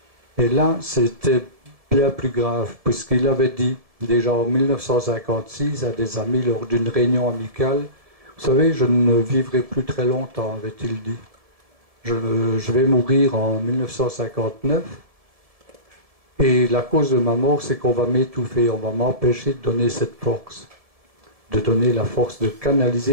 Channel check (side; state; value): left; late; 1.7 ms